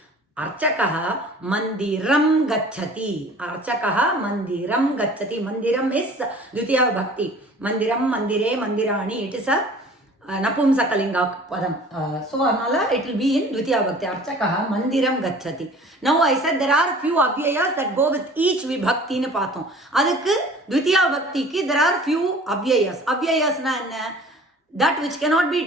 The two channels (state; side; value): normal; both; correlation 0.47